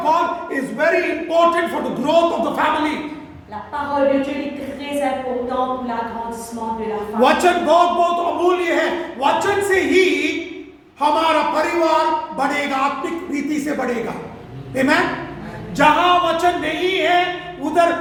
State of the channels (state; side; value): identical; both; correlation 1.00